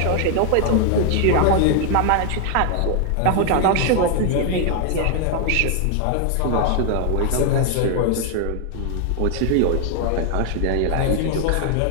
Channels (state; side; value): different; both; correlation 0.00